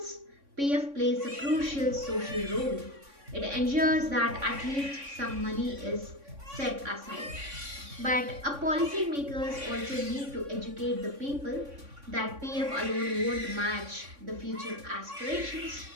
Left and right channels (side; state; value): left; late; 3.6 ms